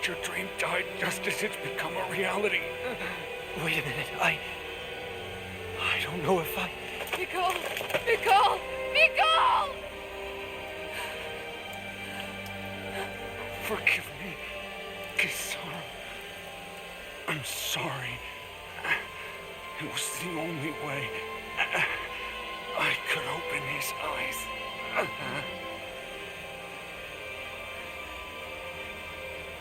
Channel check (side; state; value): both; identical; correlation 1.00